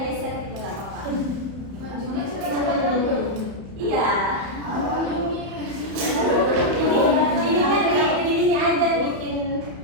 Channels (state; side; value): late; left; 31 ms